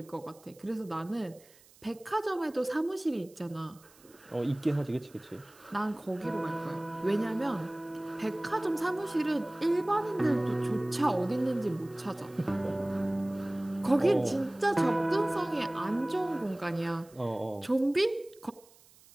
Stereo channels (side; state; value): right; noise; hiss, 26 dB below the sound